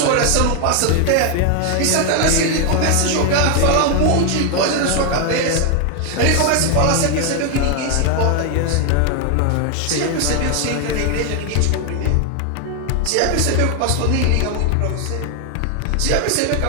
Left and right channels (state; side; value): different; both; correlation 0.00